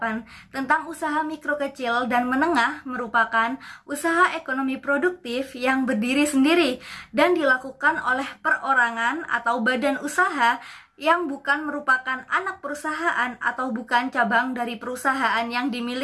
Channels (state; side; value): identical; both; correlation 1.00